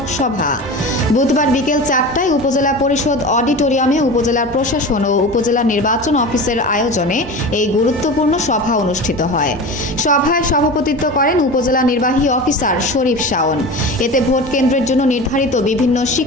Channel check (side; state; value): both; normal; correlation 0.31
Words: সভা। বুধবার বিকেল 4টায় উপজেলা পরিষদ অডিটোরিয়ামে উপজেলার প্রশাসন ও উপজেলা নির্বাচন অফিসের আয়োজনে এই গুরুত্বপূর্ণ সভা অনুষ্ঠিত হয়। সভায় সভাপতিত্ব করেন উপজেলা নির্বাহী অফিসার শরীফ শাওন। এতে ভোট কেন্দ্রের জন্য নির্ধারিত বিভিন্ন